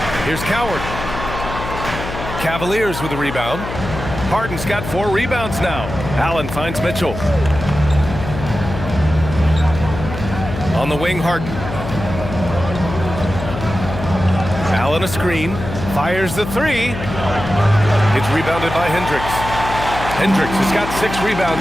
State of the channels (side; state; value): left; noise; hum, 8 dB below the sound